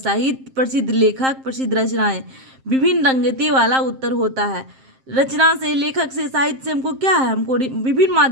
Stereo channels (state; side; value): late; left; 7.6 ms